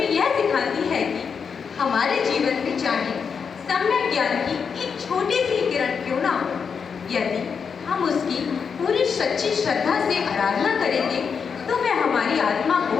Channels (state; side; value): quieter; right; 6.2 dB